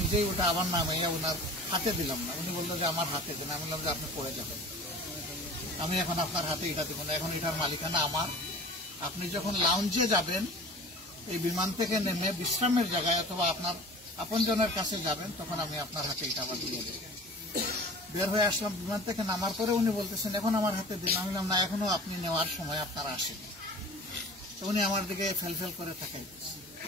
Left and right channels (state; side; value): normal; both; correlation 0.41